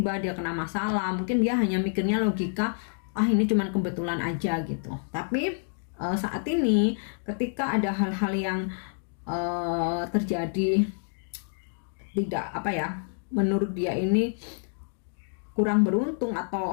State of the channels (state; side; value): silent; right; digital silence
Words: dia kena masalah, mungkin dia hanya mikirnya logika, ini cuman kebetulan aja gitu. Tapi saat ini ketika ada hal-hal yang terjadi tidak menurut dia ini kurang beruntung,